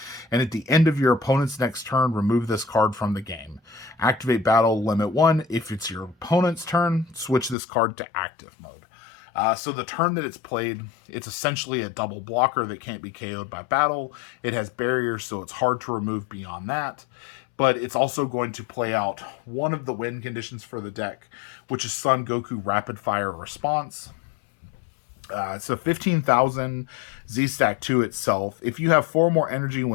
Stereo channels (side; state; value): right; drops out; at 7.6 s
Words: and at the end of your opponent's next turn, remove this card from the game. Activate battle limit 1. If it's your opponent's turn, switch this card to active mode. So the turn that it's played, it's essentially a double blocker that can't be KO'd by battle. It has barriers, so it's hard to remove beyond that. But it's also going to play out one of the win conditions for the deck, which is Son Goku Rapid Fire Response. So 15,000 Z-Stack 2 itself. If you have 4 more energy